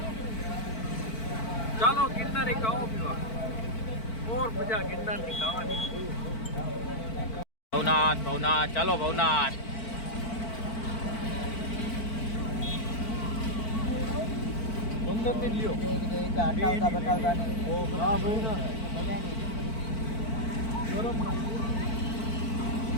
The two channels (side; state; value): right; late; 4.5 ms